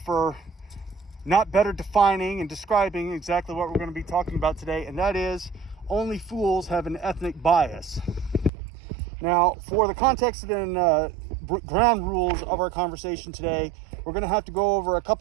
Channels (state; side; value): drops out; left; at 8.5 s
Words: not better defining and describing exactly what we're going to be talking about today, and that is only fools have an ethnic bias. Now, for the context and ground rules of our conversation today, we're going to have to go over a